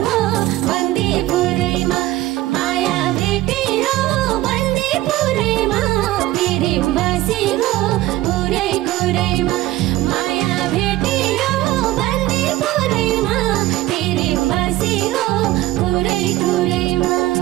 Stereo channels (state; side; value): quieter; left; 16.2 dB